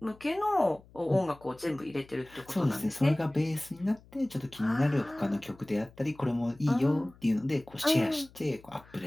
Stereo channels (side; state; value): left; noise; hum, 25 dB below the sound